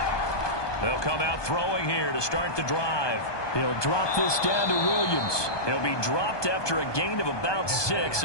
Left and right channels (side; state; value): right; late; 1.2 ms